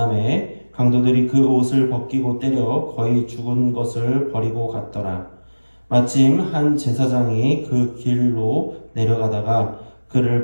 강도들이 그 옷을 벗기고 때려 거의 죽은 것을 버리고 갔더라. 마침 한 제사장이 그 길로 내려가다가 그를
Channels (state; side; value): inverted; both; correlation -1.00